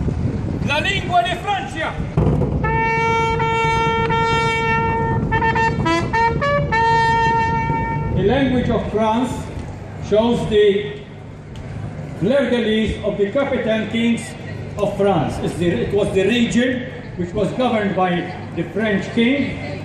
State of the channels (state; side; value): identical; both; correlation 1.00